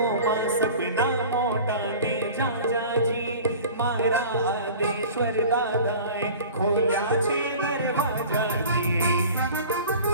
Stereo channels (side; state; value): both; inverted; correlation -0.41